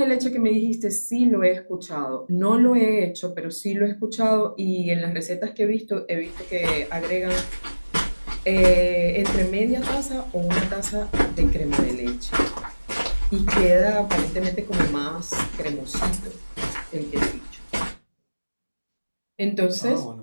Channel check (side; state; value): both; inverted; correlation -1.00